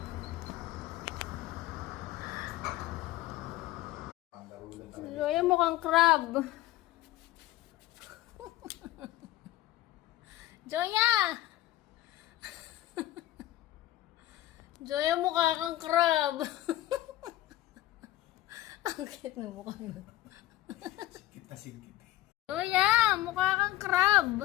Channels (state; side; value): quieter; right; 15.4 dB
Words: Joya mukhang crab. Joya! Joya mukha kang crab. Ang cute na mukha mo. Sikit na sikit. Joya, mukha kang crab.